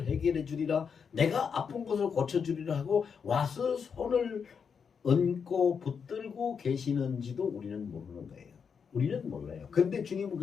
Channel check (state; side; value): quieter; right; 6.4 dB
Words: 해결해 주리라, 내가 아픈 것을 고쳐 주리라 하고 와서 손을 얹고 붙들고 계시는지도 우리는 모르는 거예요. 우리는 몰라요. 근데 주님은